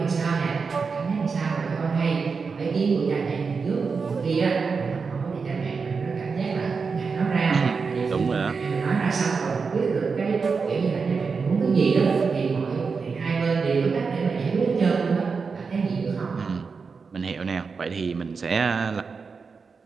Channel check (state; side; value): quieter; left; 5.1 dB